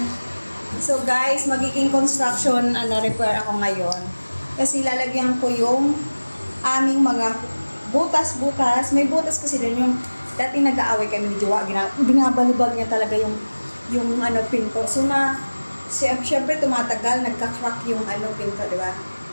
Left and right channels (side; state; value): both; inverted; correlation -1.00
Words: So, guys, magiging construction repair ako ngayon. Kasi lalagyan ko yung aming mga butas-butas. May butas kasi din yung dati nag-aaway kami ni Jowa. Binabalibag niya talaga yung pinto. So, siyempre tumatagal, nagka-crack yung pinto, di ba?